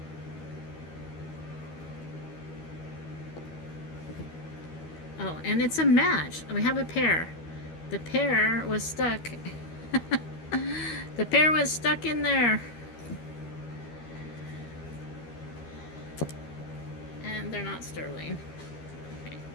Oh, and it's a match. We have a pair. The pair was stuck. The pair was stuck in there. And they're not sterling. Okay.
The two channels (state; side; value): late; right; 13 ms